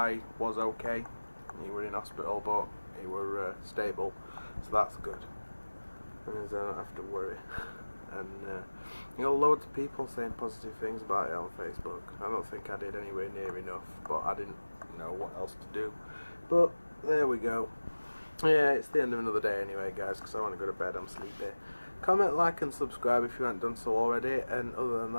was okay. He were in hospital, but he were stable, so that's good. And I don't have to worry. And you know, loads of people saying positive things about it on Facebook. I don't think I did anywhere near enough, but I didn't know what else to do. But there we go. Yeah, it's the end of another day anyway, guys, because I want to go to bed. I'm sleepy. Comment, like and subscribe if you haven't done so already. And other than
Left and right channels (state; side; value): inverted; both; correlation -1.00